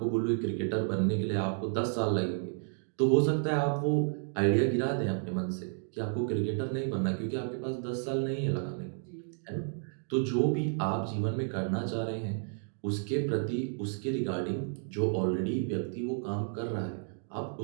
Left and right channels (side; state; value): left; silent; 57 dB below the other